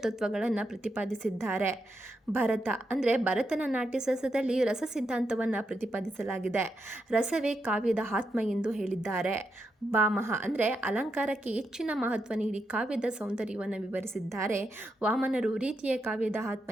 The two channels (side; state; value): both; normal; correlation 0.84